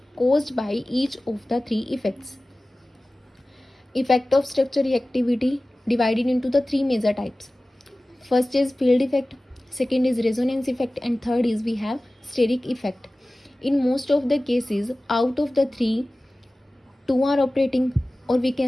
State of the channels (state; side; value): normal; both; correlation 0.97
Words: caused by each of the three effects. Effect of structure reactivity divided into the three major types. First is field effect, second is resonance effect, and third is we have steric effect. In most of the cases, out of the three, two are operating, or we